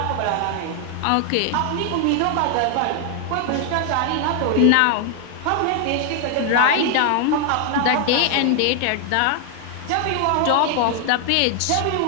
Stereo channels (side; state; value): both; different; correlation 0.00